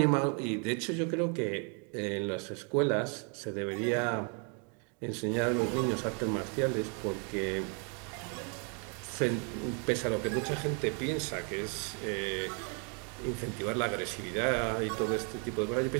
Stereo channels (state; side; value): quieter; left; 38.7 dB